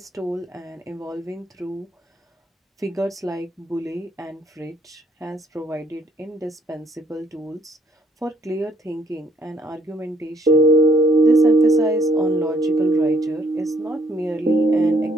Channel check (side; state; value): both; normal; correlation 0.65